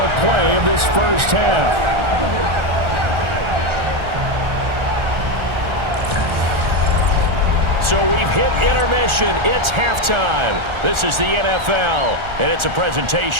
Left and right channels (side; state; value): left; late; 1.4 ms